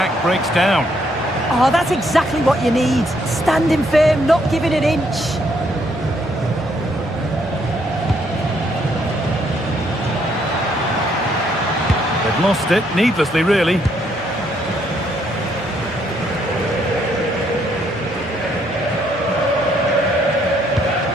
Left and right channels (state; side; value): normal; both; correlation 0.71